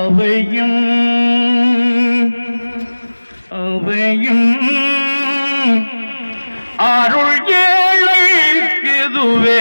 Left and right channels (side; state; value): both; inverted; correlation -1.00